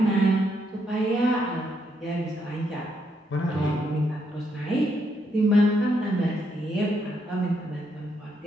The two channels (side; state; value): both; normal; correlation 0.77